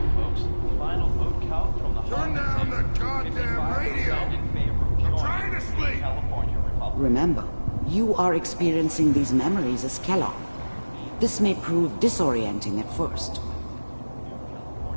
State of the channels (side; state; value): both; inverted; correlation -1.00